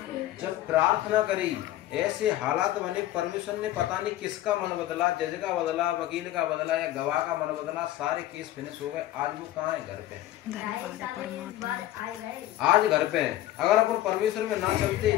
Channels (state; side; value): quieter; right; 14.4 dB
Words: जब प्रार्थना करी ऐसे हालात बने, परमेश्वर ने पता नहीं किसका मन बदला, जज का बदला, वकील का बदला या गवाह का मन बदला, सारे केस फिनिश हो गए। आज वो कहाँ है? घर पे। आज घर पे है। अगर अपन परमेश्वर में ना चलते